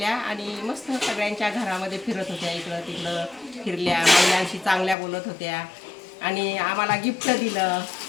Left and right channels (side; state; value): right; drops out; at 5.0 s